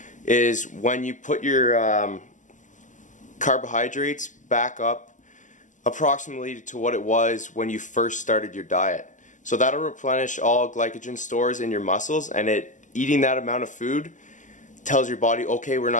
is when you put your carbohydrates back up approximately to what it was when you first started your diet. So that'll replenish all glycogen stores in your muscles, and eating that amount of food tells your body, okay, we're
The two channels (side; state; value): right; late; 0.37 ms